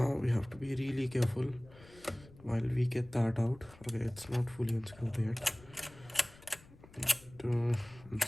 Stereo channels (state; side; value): noise; left; rumble, 22 dB below the sound